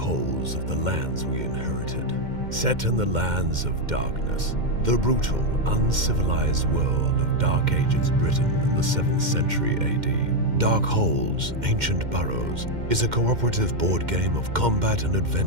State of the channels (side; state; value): left; late; 2.1 ms